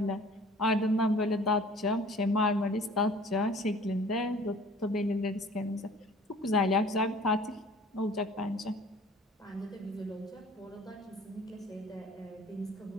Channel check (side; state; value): both; normal; correlation 0.49